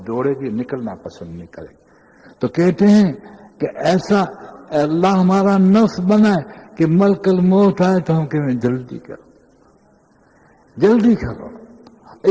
دوڑے گی، نکلنا پسند نہیں کرے گی۔ تو کہتے ہیں کہ ایسا اللہ ہمارا نفس بنائے کہ ملک الموت آئے تو ہم کہیں جلدی کرو، جلدی کرو۔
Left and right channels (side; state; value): both; identical; correlation 1.00